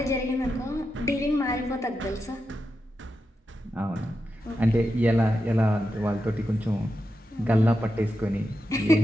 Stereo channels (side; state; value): both; normal; correlation 0.88